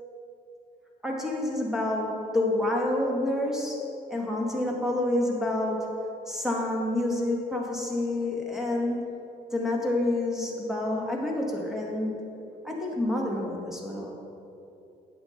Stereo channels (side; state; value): both; normal; correlation 0.68